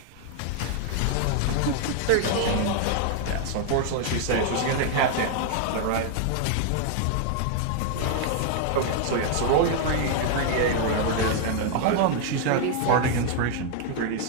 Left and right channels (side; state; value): both; different; correlation 0.00